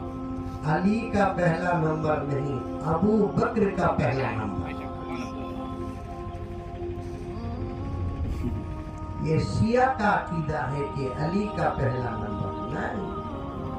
علی کا پہلا نمبر نہیں، ابو بکر کا پہلا نمبر. یہ شیعہ کا عقیدہ ہے کہ علی کا پہلا نمبر نہیں.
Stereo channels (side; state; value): both; identical; correlation 1.00